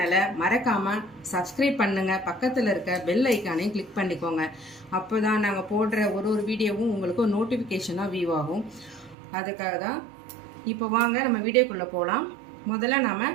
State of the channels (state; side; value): drops out; left; at 9.2 s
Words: மறக்காம சப்ஸ்கிரைப் பண்ணுங்க. பக்கத்தில் இருக்க பெல் ஐக்கானையும் கிளிக் பண்ணிக்கோங்க. அப்போதான் நாங்கள் போடுற ஒரு வீடியோவும் உங்களுக்கு நோட்டிஃபிகேஷனாக வியூ ஆகும். அதுக்காக தான். இப்போ வாங்க நம்ம வீடியோக்குள்ளே போகலாம். முதல்ல நாம